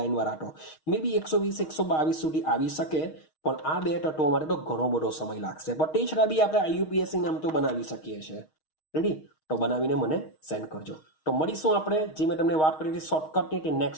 વાળા તો મે બી 120, 122 સુધી આવી શકે, પણ આ બે તત્વો માટે તો ઘણો બધો સમય લાગશે. પણ તે છતાં બી આપણે IUPAC નામ તો બનાવી શકીએ છીએ. રેડી? તો બનાવીને મને સેન્ડ કરજો. તો મળીશું આપણે, જે મેં તમને વાત કરી હતી શોર્ટકટની, તે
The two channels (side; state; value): right; late; 6.4 ms